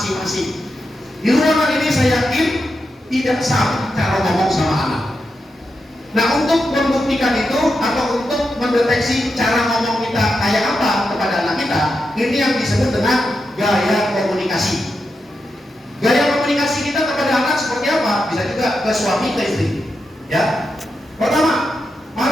masing-masing. Di ruangan ini saya yakin tidak sama cara ngomong sama anak. Nah, untuk membuktikan itu atau untuk mendeteksi cara ngomong kita kayak apa kepada anak kita, ini yang disebut dengan gaya komunikasi. Gaya komunikasi kita kepada anak seperti apa? Bisa juga ke suami, ke istri. Ya. Pertama,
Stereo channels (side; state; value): both; normal; correlation 0.87